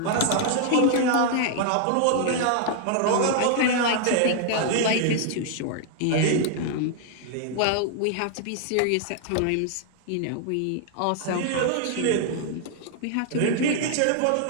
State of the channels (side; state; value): both; different; correlation 0.00